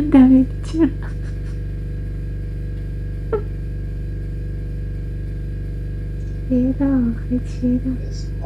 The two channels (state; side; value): identical; both; correlation 1.00